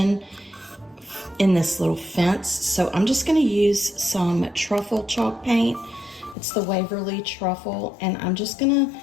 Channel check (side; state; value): right; drops out; at 6.4 s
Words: in this little fence, so I'm just going to use some truffle chalk paint. It's the Waverly Truffle, and I'm just going to